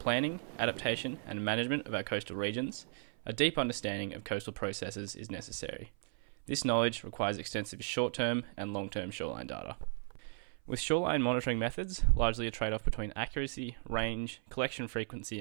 adaptation and management of our coastal regions, a deep understanding of coastal processes is necessary. This knowledge requires extensive short-term and long-term shoreline data. With shoreline monitoring methods largely a trade-off between accuracy, range, collection frequency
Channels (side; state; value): left; silent; 54 dB below the other